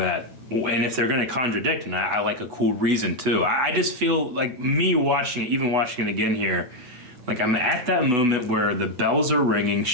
And if they're going to contradict, and I like a cool reason too. I just feel like me watching it, even watching it again here, Like, I'm at that moment where the bells are ringing.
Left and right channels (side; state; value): left; late; 8.1 ms